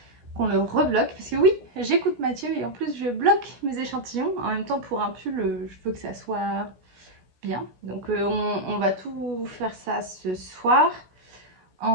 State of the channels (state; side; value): late; left; 17 ms